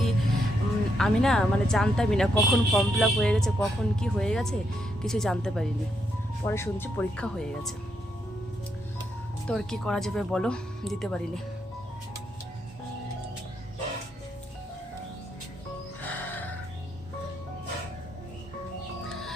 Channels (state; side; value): normal; both; correlation 0.79